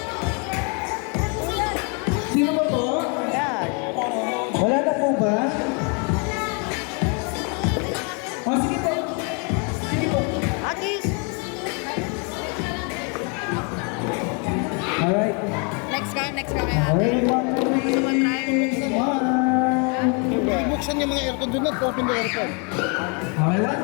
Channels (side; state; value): right; quieter; 35.7 dB